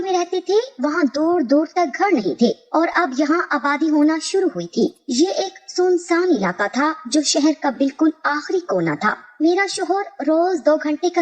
में रहते थे वहाँ दूर दूर तक घर नहीं थे और अब यहाँ आबादी होना शुरू हुई थी। ये एक सुनसान इलाका था जो शहर का बिल्कुल आखिरी कोना था। मेरा शोहर रोज 2 घंटे का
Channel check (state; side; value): identical; both; correlation 1.00